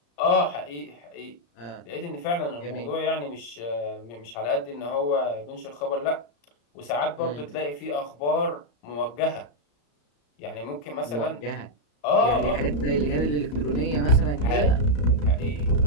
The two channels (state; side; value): late; right; 34 ms